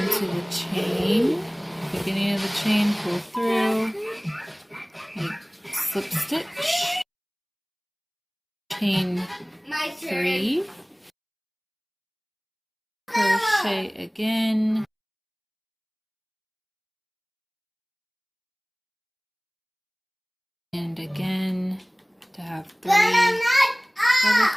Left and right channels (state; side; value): identical; both; correlation 1.00